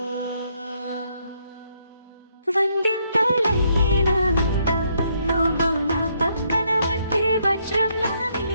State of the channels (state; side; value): inverted; both; correlation -0.73